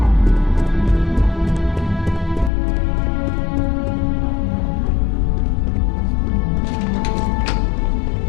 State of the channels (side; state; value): right; drops out; at 2.5 s